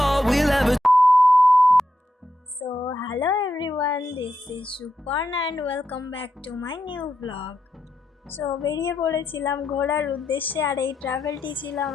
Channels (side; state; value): both; normal; correlation 0.85